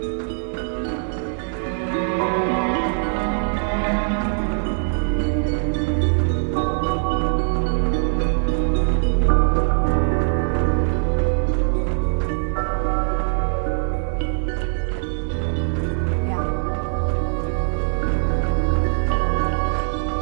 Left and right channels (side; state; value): left; silent; digital silence